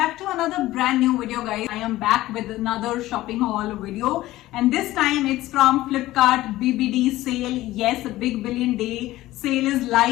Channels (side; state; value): right; quieter; 16.5 dB